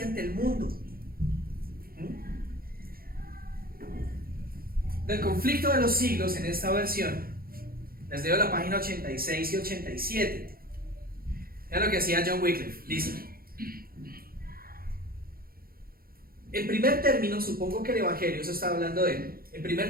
ante el mundo. Del conflicto de los siglos, en esta versión, les leo la página 86 y 87. Vean lo que hacía John Wycliffe. Dice: en primer término, supongo que el Evangelio, eso está hablando de él, en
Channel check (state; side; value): late; left; 0.43 ms